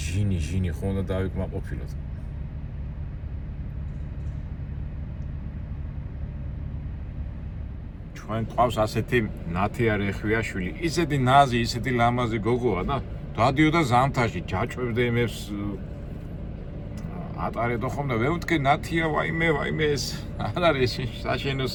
ხო უნდა დავიკმაყოფილოთ. ჩვენ ყავს ასეთი ნათიარი ხვიაშვილი, ისეთი ნაზი, ისეთი ლამაზი გოგოა და დადიოდა ზამთარში, ჯაჭვებდა იმებს ატარებდა ხოლმე, ვემთქი ნათია ვაიმე ეს არ არის საშენო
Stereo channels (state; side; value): identical; both; correlation 1.00